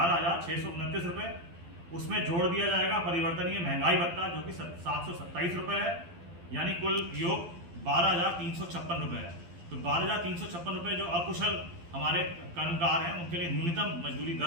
रुपये। उसमें जोड़ दिया जाएगा परिवर्तनीय महंगाई भत्ता जो कि 727 रुपये है, यानी कुल योग 12,356 रुपये है। तो 12,356 रुपये जो अकुशल हमारे कर्मकार हैं उनके लिए न्यूनतम मजदूरी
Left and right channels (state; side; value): late; left; 12 ms